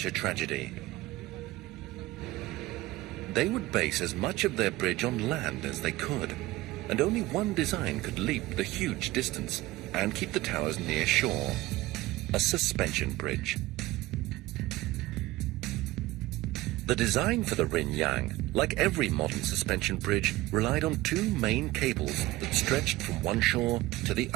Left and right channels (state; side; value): quieter; left; 18.1 dB